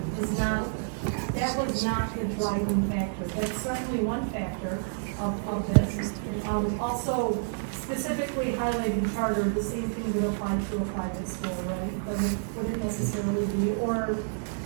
that was not the driving factor. That's certainly one factor of this. Also, specifically highlighting charter, the same thing would apply to a private school, right? Wouldn't necessarily be, or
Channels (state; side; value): silent; left; digital silence